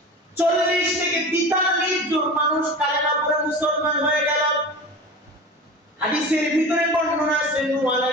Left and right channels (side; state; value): both; normal; correlation 0.33